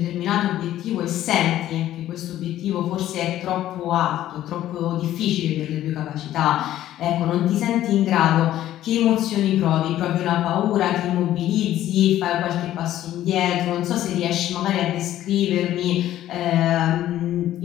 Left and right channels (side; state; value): right; quieter; 13.0 dB